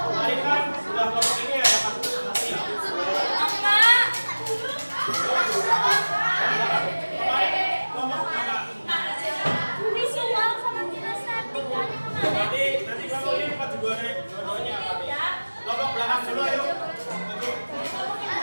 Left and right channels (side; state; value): both; inverted; correlation -1.00